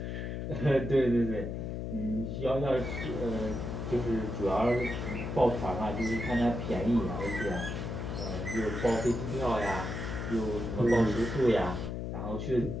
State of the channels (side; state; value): left; noise; hum, 4 dB below the sound